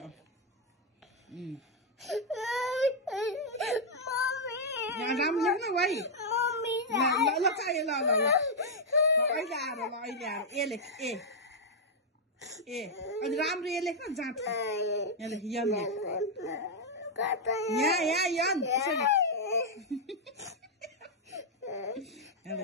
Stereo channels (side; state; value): both; normal; correlation -0.03